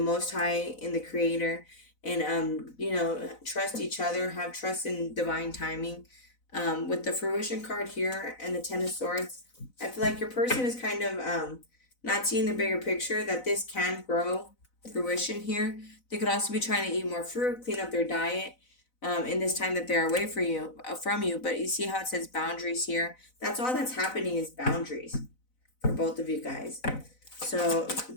Most High, in the Creator, and trust each other. Have trust in divine timing. With the Fruition card here and the Ten of Swords, I feel like your person is kind of not seeing the bigger picture that this can grow fruition here. They could also be trying to eat more fruit, clean up their diet. In this time that they're away from you, but you see how it says boundaries here. That's all that's happening is boundaries for both of you guys. So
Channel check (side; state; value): right; late; 4.0 ms